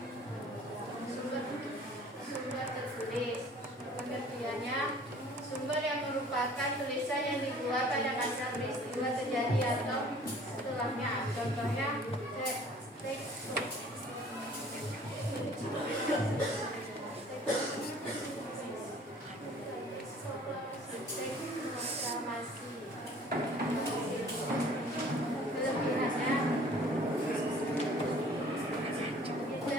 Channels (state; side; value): normal; both; correlation 0.51